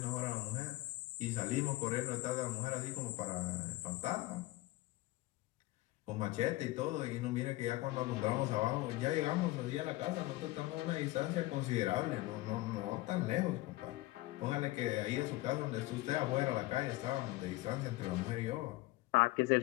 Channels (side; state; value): right; quieter; 18.8 dB